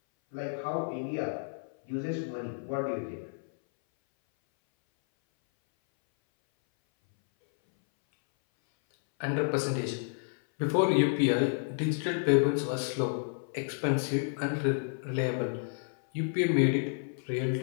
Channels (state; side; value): silent; right; 57 dB below the other